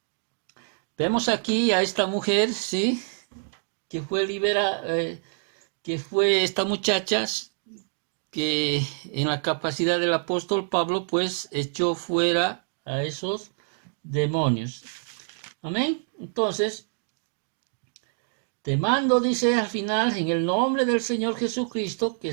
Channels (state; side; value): silent; left; digital silence